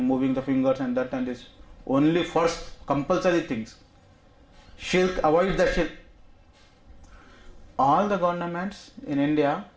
moving the fingers and that and this. Only first compulsory things. Shirk, avoid the shirk. All the governments in India,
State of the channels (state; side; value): identical; both; correlation 1.00